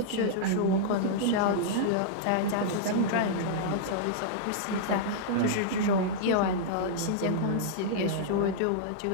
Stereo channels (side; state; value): both; different; correlation -0.02